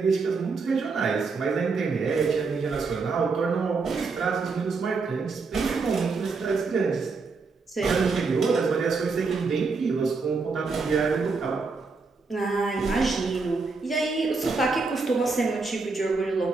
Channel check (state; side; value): quieter; left; 4.4 dB